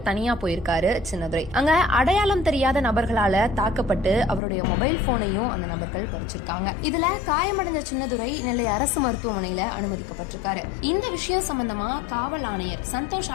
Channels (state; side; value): drops out; right; at 4.4 s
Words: தனியா போயிருக்காரு சின்னதுரை. அங்க அடையாளம் தெரியாத நபர்களால தாக்கப்பட்டு அவருடைய மொபைல் போனையும் அந்த நபர்கள் பறிச்சிருக்காங்க. இதுல காயமடைஞ்ச சின்னதுரை நெல்லை அரசு மருத்துவமனையில அனுமதிக்கப்பட்டிருக்காரு. இந்த விஷயம் சம்பந்தமா காவல் ஆணையர் சந்தோஷ்